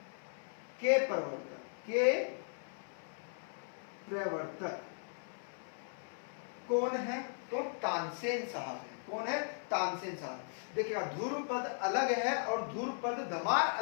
के प्रवर्तक, प्रवर्तक कौन है? तो तानसेन साहब है। कौन है? तानसेन साहब। देखिएगा, ध्रुव पद अलग है और ध्रुव पद धमार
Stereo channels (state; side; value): silent; right; 53 dB below the other